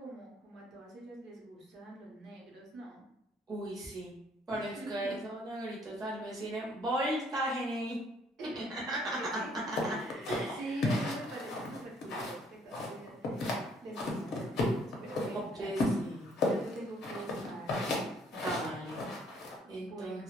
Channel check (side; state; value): both; normal; correlation 0.63